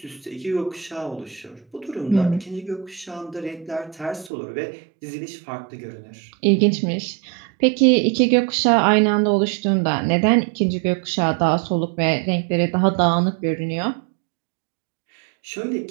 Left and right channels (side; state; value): left; drops out; at 4.3 s